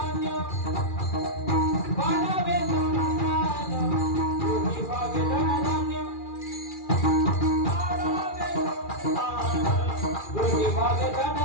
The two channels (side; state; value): right; late; 2.4 ms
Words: वाढावे संतान कोणी भावे धनधान्य, वाढावे संतान विभावे